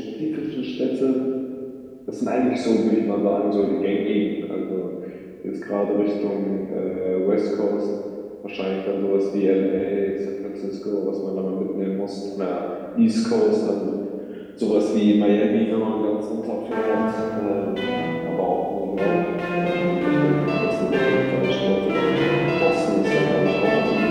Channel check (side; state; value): both; identical; correlation 1.00